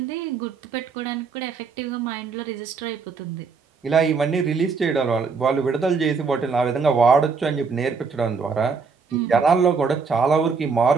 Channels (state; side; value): quieter; left; 5.1 dB